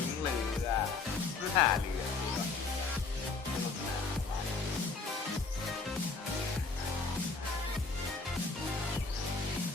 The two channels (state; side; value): quieter; right; 4.2 dB